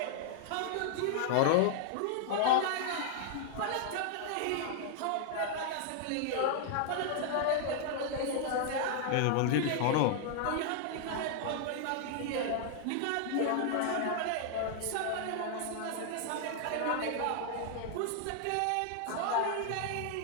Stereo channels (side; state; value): both; different; correlation -0.01